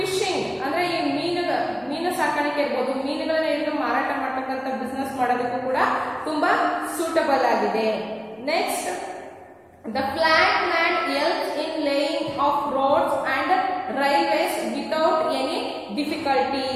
ಅಂದ್ರೆ ಈ ಮೀನು ಸಾಕಾಣಿಕೆ ಇರ್ಬೋದು, ಮೀನುಗಳನ್ನ ಹಿಡಿದು ಮಾರಾಟ ಮಾಡ್ತಕ್ಕಂಥ ಬಿಸ್ನೆಸ್ ಮಾಡೋದಕ್ಕೂ ಕೂಡ ತುಂಬಾ ಸೂಟಬಲ್ ಆಗಿದೆ. Next, the flat land helps in laying of roads and railways without any difficulty.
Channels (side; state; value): both; identical; correlation 1.00